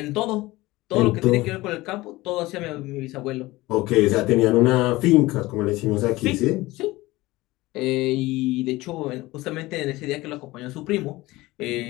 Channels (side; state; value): right; quieter; 19.5 dB